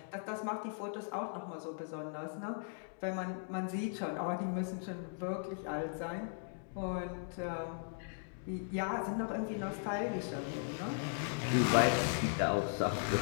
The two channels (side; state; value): right; silent; digital silence